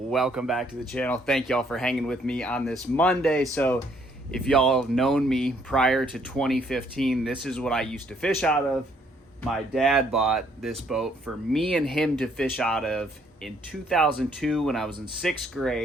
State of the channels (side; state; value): both; normal; correlation 0.67